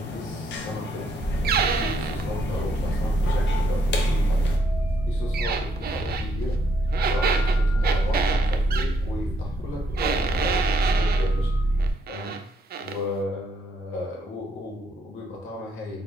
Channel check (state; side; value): normal; both; correlation 0.73